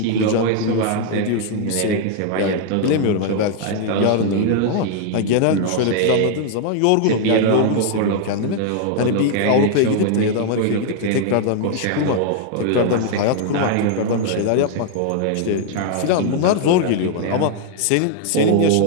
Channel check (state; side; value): different; both; correlation 0.00